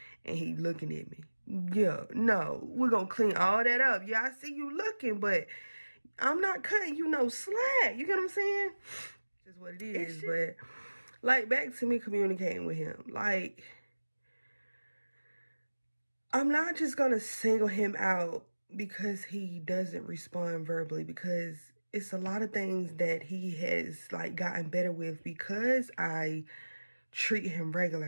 And he looking at me. Yeah, no, we're going to clean all that up. Yeah, I see you looking, but I'm not cutting you no slack. You get what I'm saying? That's what it is. But, like, back to me communicating with him. Like, I'm not just going to single him out because he doesn't respond verbally, because it's a lot of things that he has, like, gotten better with because I treat him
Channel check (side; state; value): both; inverted; correlation -1.00